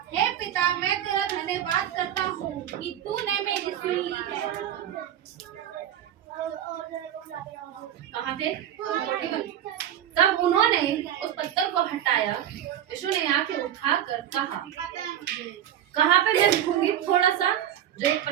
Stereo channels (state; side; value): quieter; left; 10.8 dB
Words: हे पिता, मैं तेरा धन्यवाद करता हूँ कि तूने मेरी सुन ली है। कहाँ थे? 41। तब उन्होंने उस पत्थर को हटाया। यीशु ने आके उठाकर कहा, कहाँ पे मैं लिखूंगी थोड़ा सा, जो एक